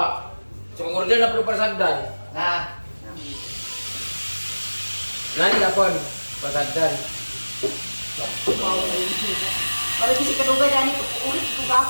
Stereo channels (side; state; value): both; inverted; correlation -1.00